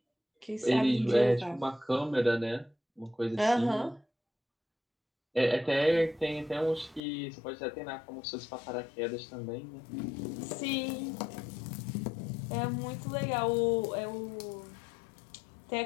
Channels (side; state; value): right; drops out; at 7.0 s